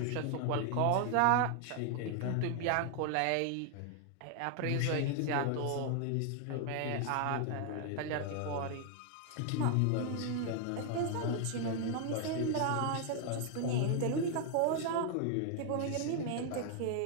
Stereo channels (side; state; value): both; different; correlation 0.00